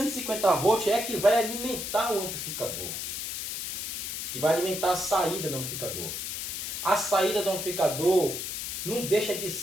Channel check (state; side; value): noise; left; hiss, 4 dB below the sound